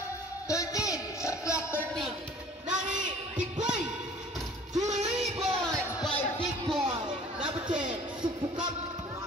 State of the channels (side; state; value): both; normal; correlation 0.49